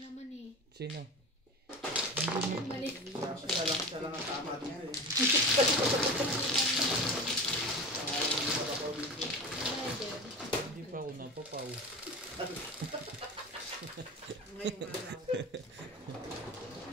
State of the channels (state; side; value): normal; both; correlation 0.29